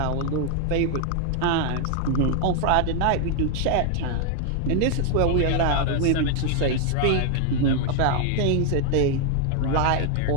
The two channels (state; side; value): different; both; correlation 0.00